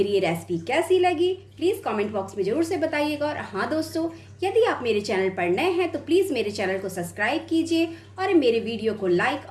ये रेसिपी कैसी लगी प्लीज़ कमेंट बॉक्स में ज़रूर से बताइएगा। और हाँ दोस्तों, यदि आप मेरे चैनल पर नए हैं तो प्लीज़ मेरे चैनल को सब्सक्राइब कीजिए और मेरे वीडियो को लाइक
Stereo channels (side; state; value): both; identical; correlation 1.00